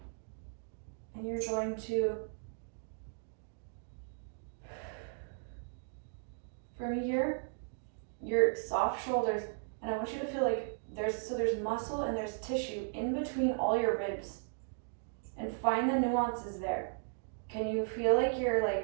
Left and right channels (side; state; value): left; silent; digital silence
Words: And you're going to, from here, your soft shoulders, and I want you to feel like there's muscle and there's tissue in between all your ribs. And find the nuances there. Can you feel like you're